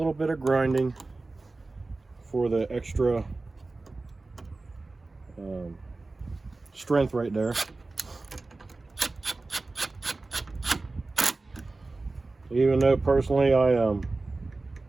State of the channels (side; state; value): left; quieter; 3.4 dB